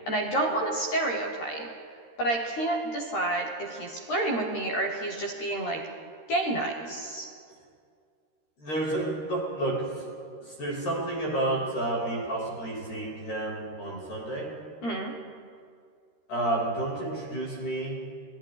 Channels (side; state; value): right; late; 13 ms